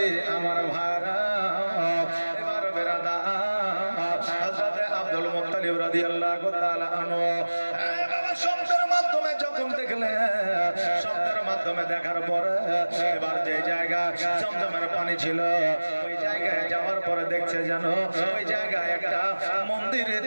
আমার ভাইরা এবার বেরাদা হযরত আব্দুল মুত্তালিব রাদিয়াল্লাহু তাআলা আনহু শব্দের মাধ্যমে যখন দেখলেন, শব্দের মাধ্যমে দেখার পরে এবার যে জায়গা জমজমের পানি ছিল ওই জায়গায় যাওয়ার পরে দেখছে যেন ওই জায়গায় একটা মন্দির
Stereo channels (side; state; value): both; inverted; correlation -1.00